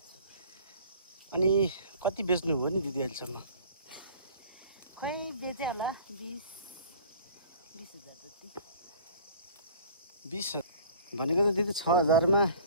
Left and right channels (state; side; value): inverted; both; correlation -0.47